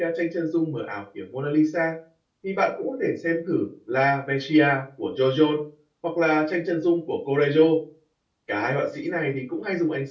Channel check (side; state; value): both; identical; correlation 1.00